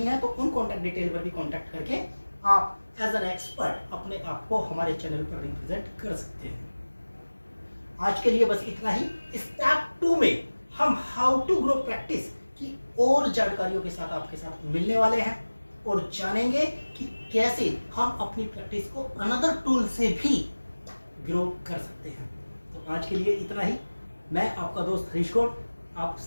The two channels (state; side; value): inverted; both; correlation -1.00